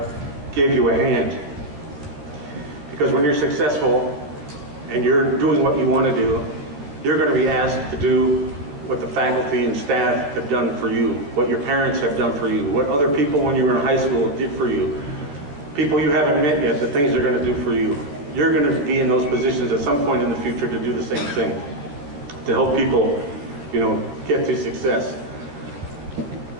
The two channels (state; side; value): late; left; 14 ms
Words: gave you a hand. Because when you're successful and you're doing what you want to do, you're going to be asked to do what the faculty and staff have done for you, what your parents have done for you, what other people when you were in high school did for you, people you haven't met yet, the things they're going to do for you. You're going to be in those positions at some point in the future to do the same thing, to help people, get to success.